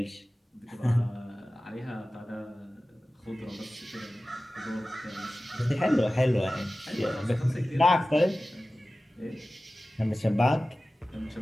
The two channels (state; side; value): normal; both; correlation 0.96